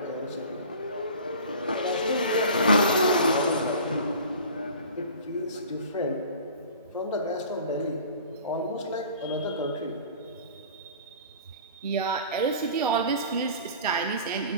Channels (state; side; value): inverted; both; correlation -0.42